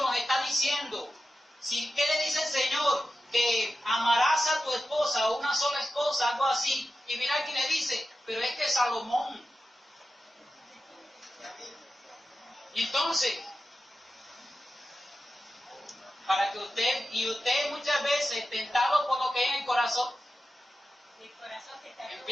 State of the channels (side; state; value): both; normal; correlation 0.92